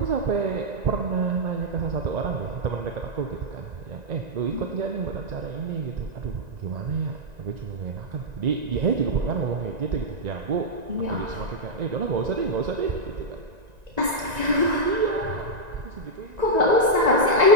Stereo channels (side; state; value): left; late; 1.9 ms